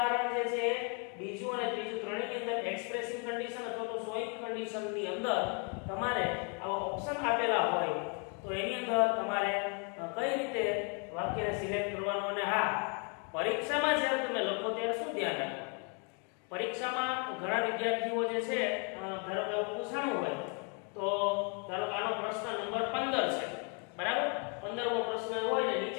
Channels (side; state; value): right; quieter; 37.0 dB